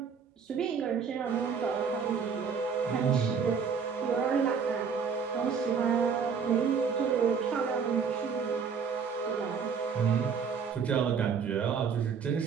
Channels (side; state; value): left; quieter; 6.2 dB